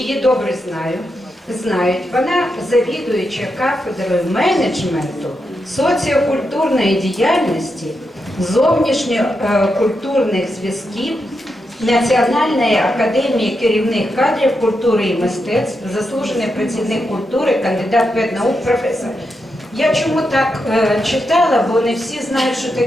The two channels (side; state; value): both; normal; correlation 0.85